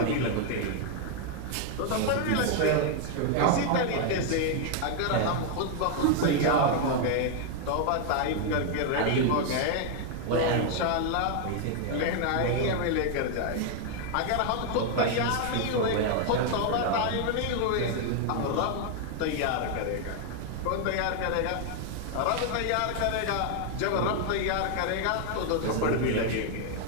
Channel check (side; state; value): both; different; correlation 0.00